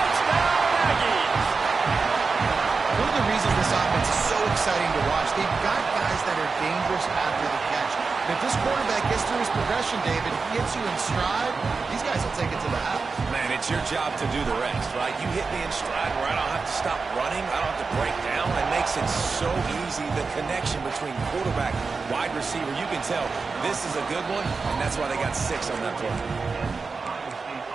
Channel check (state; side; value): quieter; left; 4.5 dB